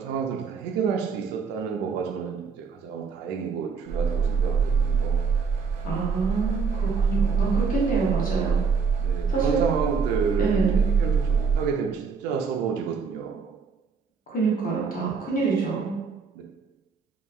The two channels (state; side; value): quieter; left; 5.4 dB